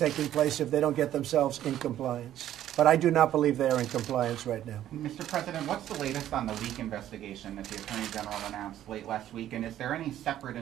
place if they don't get themselves in compliance. But I do not believe they are in compliance right now. Mr. President, what's the latest on the leak investigation that the Attorney General announced late last week? And is there any separate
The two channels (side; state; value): left; quieter; 12.1 dB